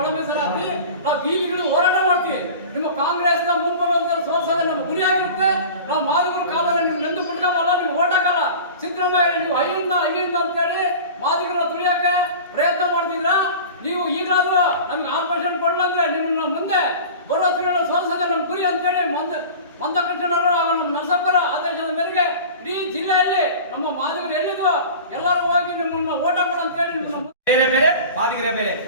ಮೀಸಲಾತಿ ನಾವು ಬೀದಿಗಳು ಹೋರಾಟ ಮಾಡ್ತೀವಿ. ನಿಮ್ಮ ಕಾಂಗ್ರೆಸ್ನ ಮುಂಬರುವಂತ ಸೋಲ್ಸೋದೇ ನಮ್ಮ ಗುರಿಯಾಗಿರುತ್ತೆ. ನಾವು ಮಾದಿಗರು ಕಾಲಲ್ಲಿ ನಿಮ್ಗೆ ಎಂದು ಬಿಟ್ಕೊಂಬಲ್ಲ, ನಿಮ್ಗೆ ಓಟ್ ಹಾಕಲ್ಲ. ಸಿದ್ದರಾಮಯ್ಯ ನೀವು ಅಯ್ಯಿಂದ ಅಂತೇಳಿ ಮಾದಿಗರ ತುಳಿಯಕ್ಕೆ ಪ್ರಯತ್ನ ಮಾಡ್ತಿದ್ರ. ನೀವು ಈಗಲಾದ್ರೂ ನಮ್ಗೆ 6% ಕೊಡಲಂದ್ರೆ ನಿಮ್ಮನ್ನ ಮುಂದೆ ಬರೋ ತಿಂಗಳ ಸೋಲ್ಸೋದೇ ನಮ್ಮ ಗುರಿ ಅಂತೇಳಿ ಮಂದಕೃಷ್ಣವರು ನಮ್ಮ ನರಸಪ್ಪರ ಆದೇಶದ ಮೇರೆಗೆ ಇಡೀ ಜಿಲ್ಲೆಯಲ್ಲಿ ನಮ್ಮ ಮಾದಿಗರು ಎಲ್ಲಿದ್ದು ಎಲ್ಲರೂ ಹೋಗಿ ನಿಮ್ಮನ್ನ ಓಟ ಕೊಡ ಅಂತೇಳಿ ಬೇರೆ ಬೇರೆ ಮಾದಿಗರೇ ಬೇರೆ.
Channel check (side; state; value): both; inverted; correlation -0.37